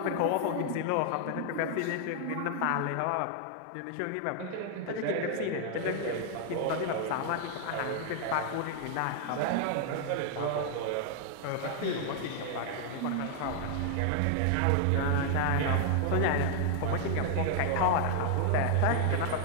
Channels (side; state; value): both; different; correlation 0.00